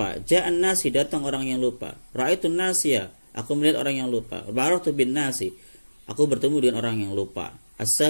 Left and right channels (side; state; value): both; inverted; correlation -1.00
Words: Ja'an nasi datang orang yang lupa. Ra'aitu nasiyah, aku melihat orang yang lupa. Baratu bin nasi, aku bertemu dengan orang yang lupa.